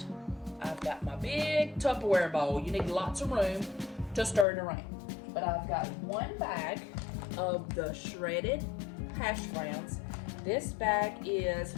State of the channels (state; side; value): drops out; right; at 4.5 s